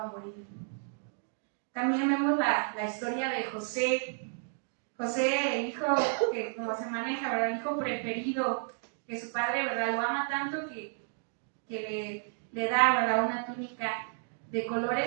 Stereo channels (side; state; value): left; silent; 57 dB below the other